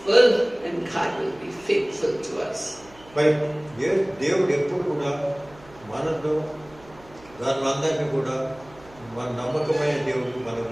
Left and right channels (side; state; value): right; noise; hum, 24 dB below the sound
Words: and God will be faithful to us. మరి దేవుడు ఎప్పుడు కూడా మనతో దానిలందరినీ కూడా మన నమ్మకమైన దేవుడు, మనం